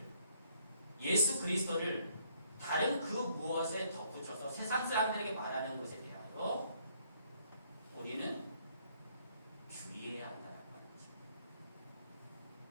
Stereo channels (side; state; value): both; inverted; correlation -0.67